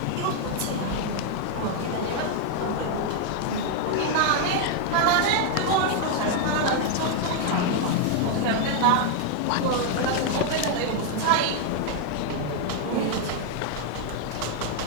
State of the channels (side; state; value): both; different; correlation 0.00